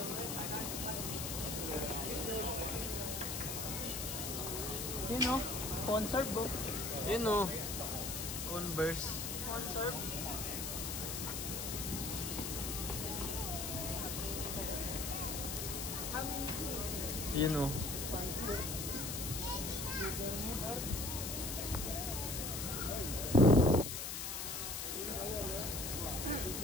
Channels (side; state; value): left; noise; hiss, 3 dB below the sound